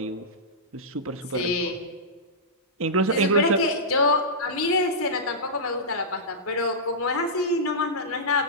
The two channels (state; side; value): normal; both; correlation -0.14